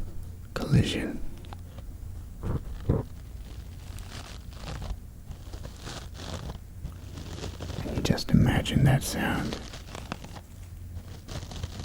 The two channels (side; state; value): both; identical; correlation 1.00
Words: collision? Can you just imagine that sound